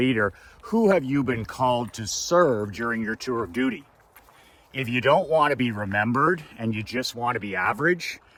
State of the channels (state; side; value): identical; both; correlation 1.00